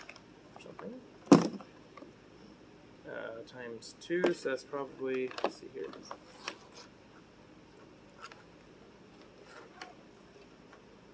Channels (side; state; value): both; identical; correlation 1.00